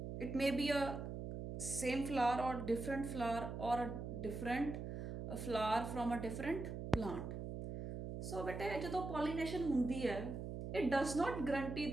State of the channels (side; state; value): right; noise; hum, 6 dB below the sound